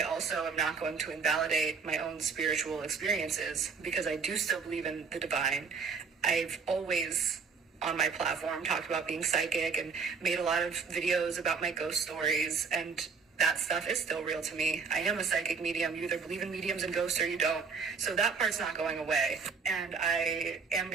also am not going to invalidate my own spiritual experiences, because I do still believe in the divine. I've always, on my platform, talked about being psychic and made a lot of videos about my ghost stories, and that stuff is still real to me. I am a psychic medium. You either believe in mediums and ghosts or you don't. So that part's not going away. And I am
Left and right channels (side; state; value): left; quieter; 5.3 dB